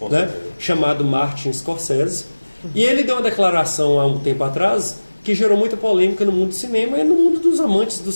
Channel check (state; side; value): inverted; both; correlation -1.00